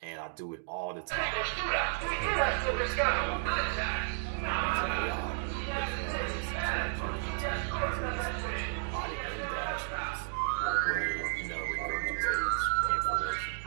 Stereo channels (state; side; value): silent; left; digital silence